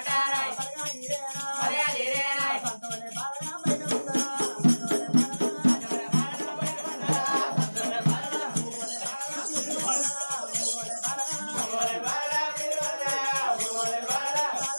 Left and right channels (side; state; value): both; inverted; correlation -1.00